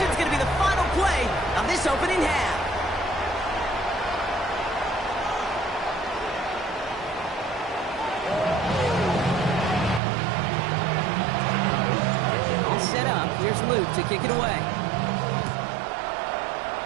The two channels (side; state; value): left; drops out; at 10.0 s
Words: is going to be the final play of this opening half. All set up. Here's Luke to kick it away.